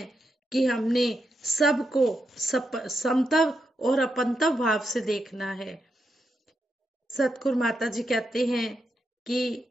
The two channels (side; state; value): both; normal; correlation 0.84